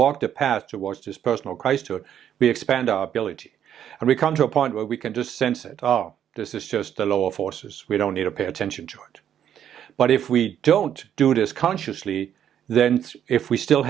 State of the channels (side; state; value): left; quieter; 9.8 dB